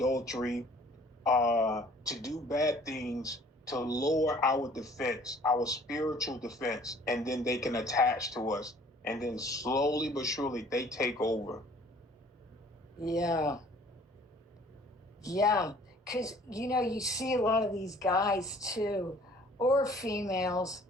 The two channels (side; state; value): both; normal; correlation 0.54